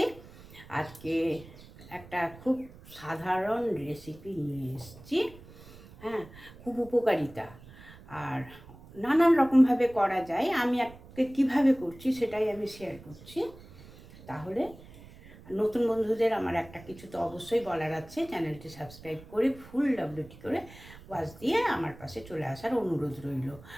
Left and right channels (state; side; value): noise; right; rumble, 19 dB below the sound